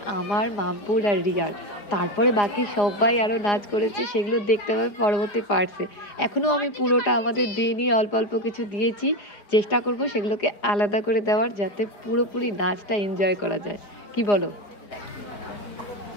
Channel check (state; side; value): late; right; 4.9 ms